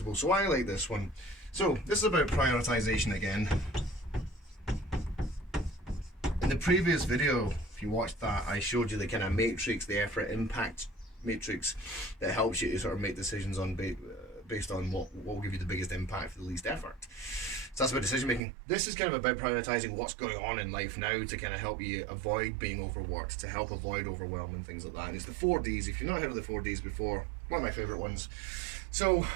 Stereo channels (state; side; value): drops out; left; at 18.4 s